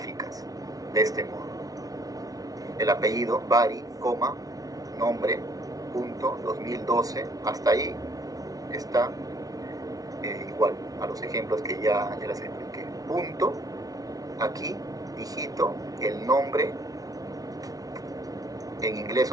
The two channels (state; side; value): late; left; 0.18 ms